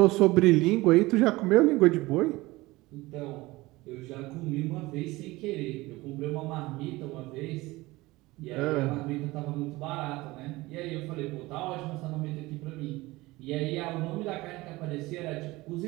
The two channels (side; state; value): left; quieter; 20.3 dB